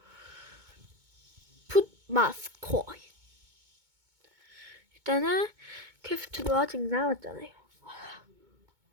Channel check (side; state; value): left; late; 2.2 ms